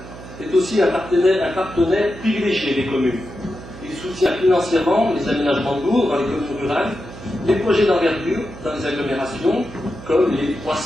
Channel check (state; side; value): noise; right; hum, 15 dB below the sound